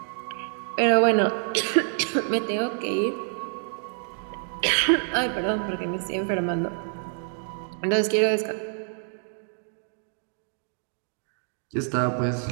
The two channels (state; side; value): silent; left; 58 dB below the other